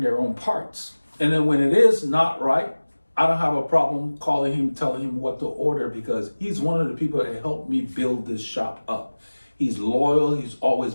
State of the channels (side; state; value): both; inverted; correlation -1.00